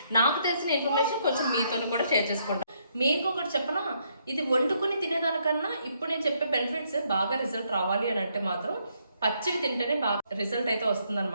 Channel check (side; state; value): both; inverted; correlation -0.73